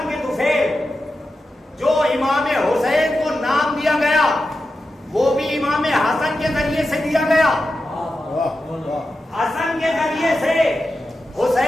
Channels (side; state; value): both; normal; correlation 0.91